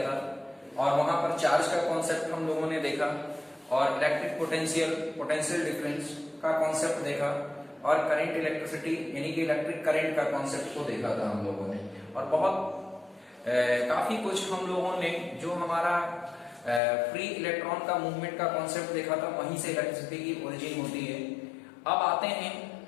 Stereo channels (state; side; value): drops out; right; at 16.8 s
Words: और वहां पर चार्ज का कॉन्सेप्ट हम लोगों ने देखा और इलेक्ट्रिक पोटेंशियल डिफरेंस का कॉन्सेप्ट देखा और करंट इलेक्ट्रिसिटी यानी कि इलेक्ट्रिक करंट का कॉन्सेप्ट को देखा था हम लोगों ने। और बहुत काफी कुछ हम लोगों ने जो हमारा फ्री इलेक्ट्रॉन का मूवमेंट का कॉन्सेप्ट देखा था, वहीं से इलेक्ट्रिसिटी की ओरिजिन होती है। अब आते हैं